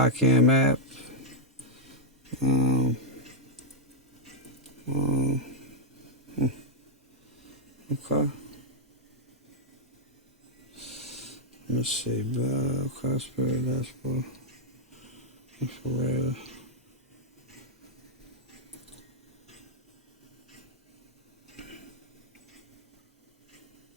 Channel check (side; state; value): both; normal; correlation -0.04